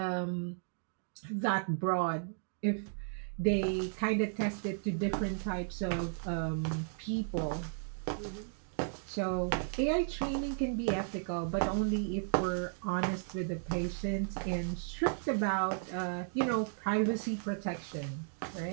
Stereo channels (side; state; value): left; silent; digital silence